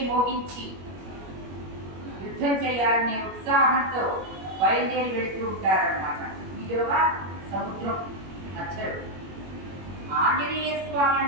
మోగించి యుద్ధం చేయాలనే ఉత్సాహంతో బయలుదేరి వెళుతూ ఉంటారన్నమాట. ఈలోగా సముద్రం మధ్యలో ఆంజనేయ స్వామి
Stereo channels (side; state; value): left; late; 21 ms